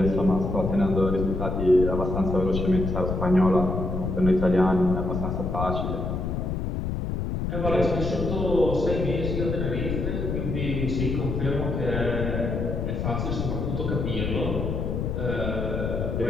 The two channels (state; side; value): noise; left; rumble, 2 dB below the sound